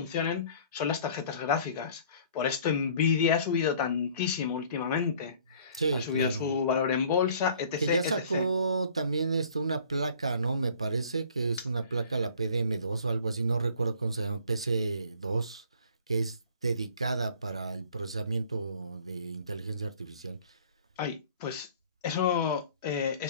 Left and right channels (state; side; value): inverted; both; correlation -0.52